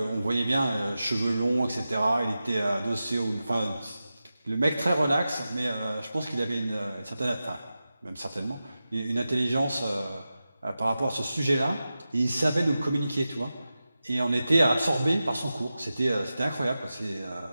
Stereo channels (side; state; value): both; inverted; correlation -0.93